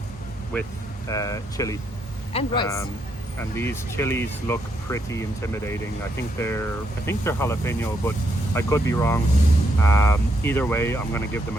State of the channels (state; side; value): normal; both; correlation 0.77